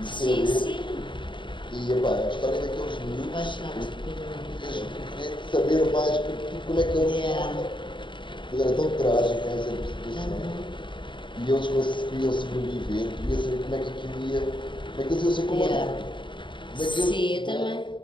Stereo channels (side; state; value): right; late; 0.23 ms